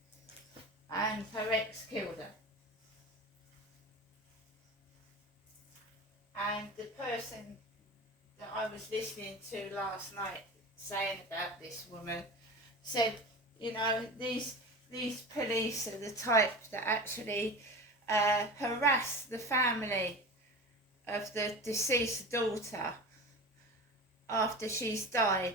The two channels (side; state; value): both; normal; correlation 0.31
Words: And her ex killed her. And the person that I was listening to last night saying about this woman said, these police are the type that actually harass the family of the deceased daughter after she's died